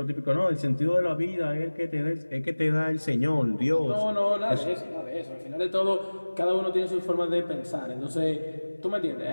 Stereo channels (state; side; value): inverted; both; correlation -1.00